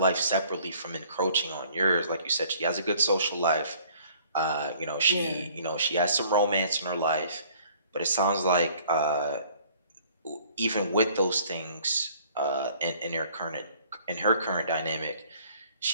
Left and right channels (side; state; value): both; inverted; correlation -0.56